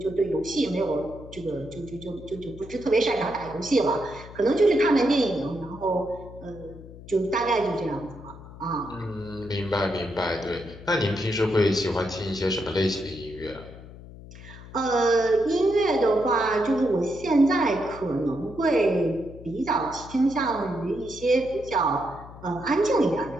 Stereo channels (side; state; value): left; noise; hum, 16 dB below the sound